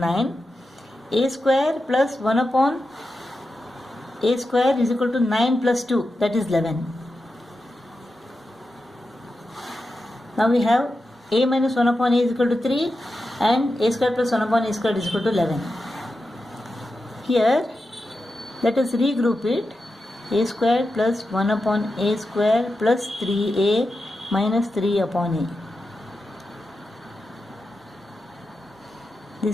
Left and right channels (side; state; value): both; normal; correlation 0.90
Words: A square plus 1 upon a square is equal to 9 plus 2, that is 11. Now we have a minus 1 upon a is equal to 3 and a square plus 1 upon a square is equal to 11. Here let us regroup it. A square plus 1 upon a square plus 3a minus 3 upon a.